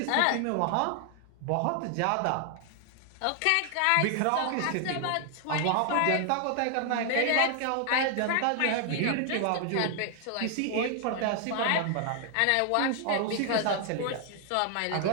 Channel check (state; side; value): different; both; correlation 0.00